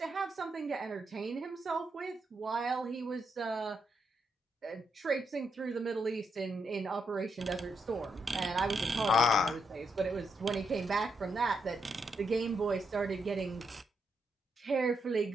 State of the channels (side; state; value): both; normal; correlation 0.80